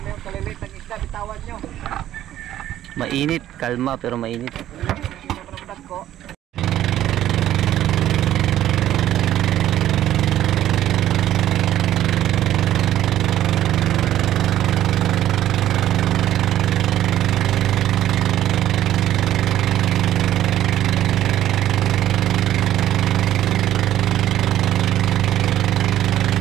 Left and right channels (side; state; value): left; quieter; 12.5 dB